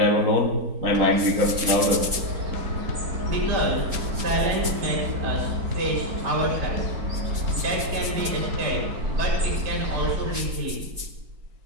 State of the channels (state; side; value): late; left; 4.3 ms